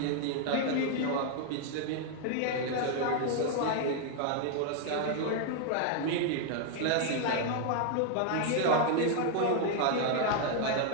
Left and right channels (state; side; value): different; both; correlation 0.00